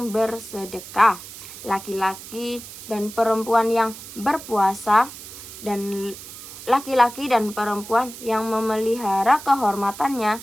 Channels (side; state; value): right; noise; hiss, 14 dB below the sound